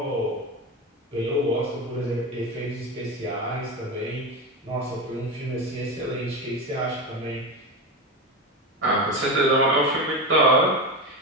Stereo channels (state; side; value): normal; both; correlation 0.19